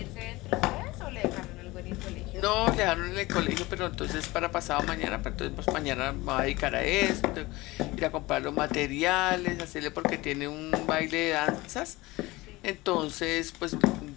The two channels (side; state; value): right; quieter; 20.7 dB